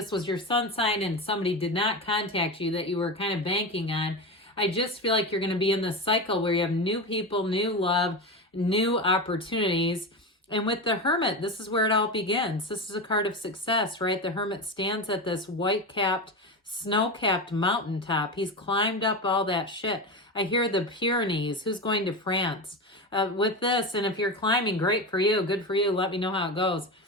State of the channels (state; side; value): normal; both; correlation 0.21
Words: was your sun sign and somebody did not contact you that you were kind of banking on, I just feel like you're going to be in this cycle where you have new people, new love, new opportunities. And with the Hermit, this is where it all begins. This is a card of success, right? The Hermit stands at this white-capped, snow-capped mountaintop. He's climbed up all that shit. I hear the Pyrenees. Who's going to France? With this, and if you're climbing, great for you, good for you, let me know how it goes.